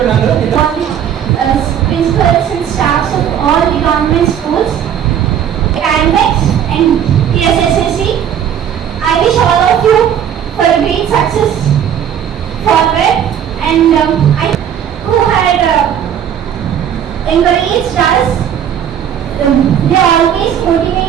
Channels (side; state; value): left; quieter; 9.2 dB